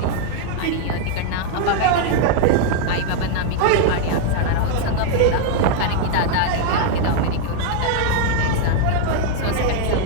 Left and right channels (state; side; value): different; both; correlation 0.00